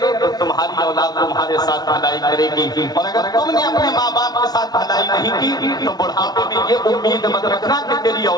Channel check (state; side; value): late; right; 0.19 ms